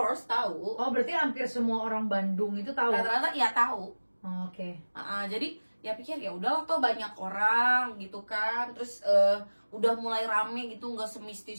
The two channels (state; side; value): inverted; both; correlation -1.00